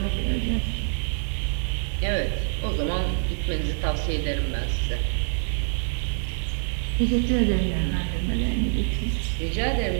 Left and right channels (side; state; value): left; silent; digital silence